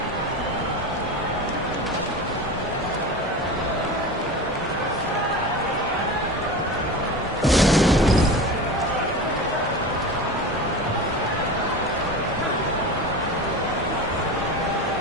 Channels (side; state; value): both; normal; correlation 0.29